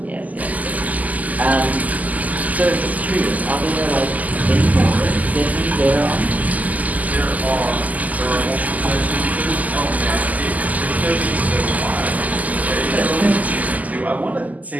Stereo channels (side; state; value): left; late; 0.078 ms